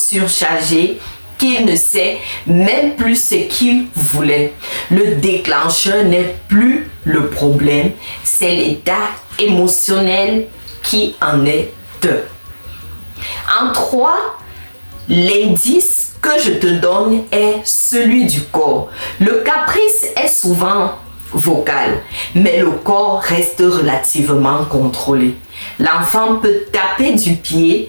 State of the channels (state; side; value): inverted; both; correlation -1.00